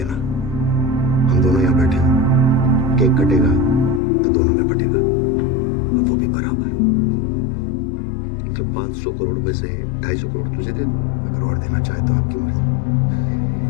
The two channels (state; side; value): drops out; right; at 4.0 s